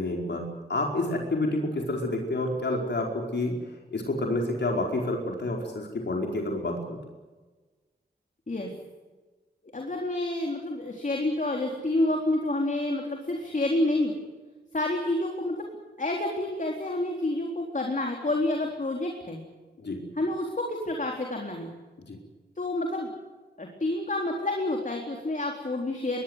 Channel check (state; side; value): normal; both; correlation 0.51